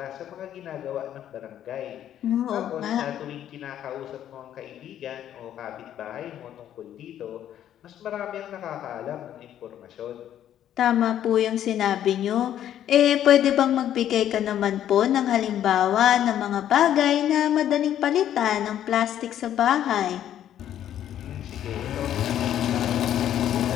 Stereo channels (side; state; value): right; quieter; 10.9 dB